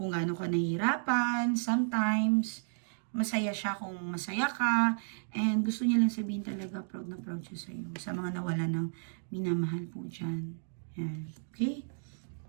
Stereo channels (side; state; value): left; silent; digital silence